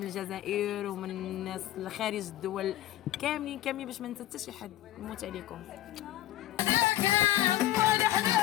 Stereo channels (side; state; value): right; quieter; 14.1 dB